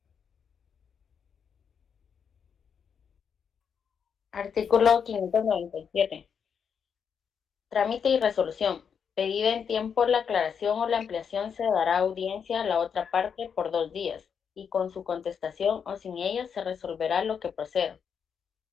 Artículo 597. Trámite y resolución. Pedida en tiempo la aclaración o la ampliación, se dará audiencia a la otra parte por 2 días, y con su contestación o sin ella se resolverá lo que proceda.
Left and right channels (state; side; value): quieter; right; 7.0 dB